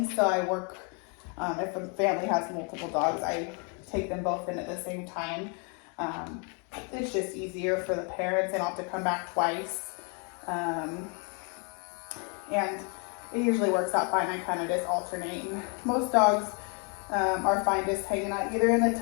so I work, if a family has multiple dogs, I take them both in at the same time. It's just easier for the parents. They don't have to come back twice. And it usually works out fine. I kind of just alternate. And most dogs are fine just hanging out either in the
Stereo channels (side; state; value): right; quieter; 36.3 dB